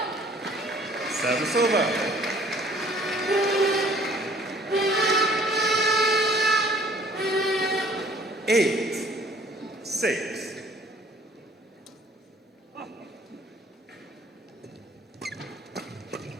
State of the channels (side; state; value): both; normal; correlation 0.56